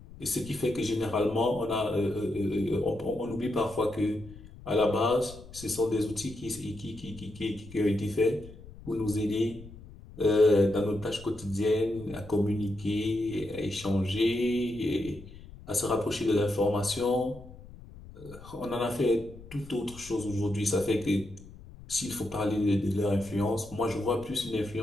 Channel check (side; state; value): left; noise; rumble, 18 dB below the sound